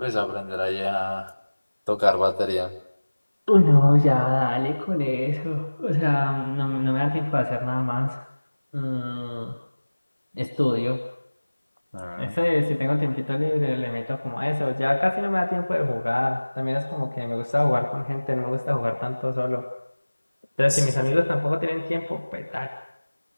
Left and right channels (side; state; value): both; inverted; correlation -1.00